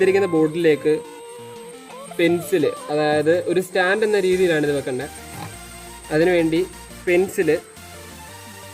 ബോട്ടിലേക്ക് പെൻസില്, അതായത് ഒരു സ്റ്റാൻഡ് എന്ന രീതിയിലാണ് ഇത് വെക്കേണ്ടത്. അതിനുവേണ്ടി പെൻസില്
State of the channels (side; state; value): both; identical; correlation 1.00